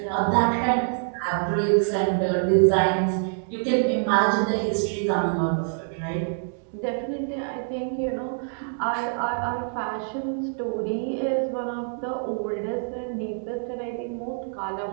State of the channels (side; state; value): left; silent; digital silence